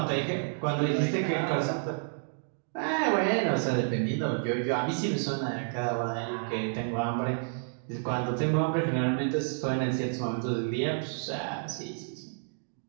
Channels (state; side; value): silent; left; digital silence